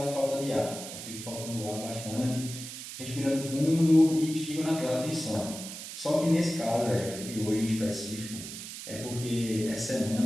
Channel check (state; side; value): noise; right; hiss, 10 dB below the sound